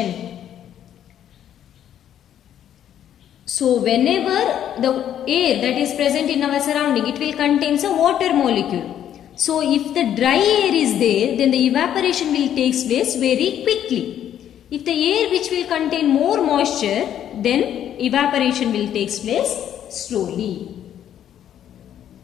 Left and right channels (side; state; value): right; quieter; 10.4 dB